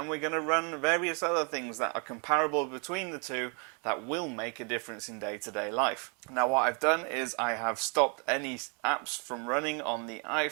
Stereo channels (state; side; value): quieter; left; 36.5 dB